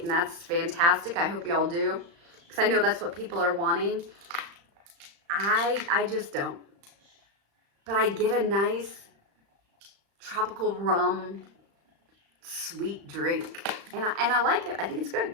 and that's fantastic. I hope y'all do, because I know that's what people are wanting. I just don't. But I get a nice tropical rum sweet drink, and I like it. I think it's good.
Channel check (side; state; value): left; late; 35 ms